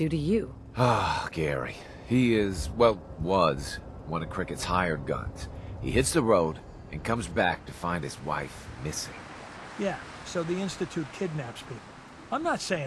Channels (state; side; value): identical; both; correlation 1.00